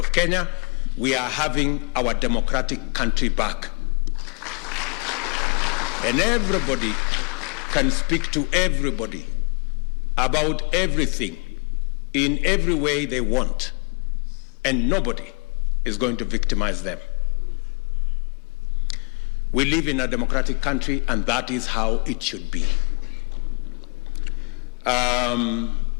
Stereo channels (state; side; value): quieter; right; 33.3 dB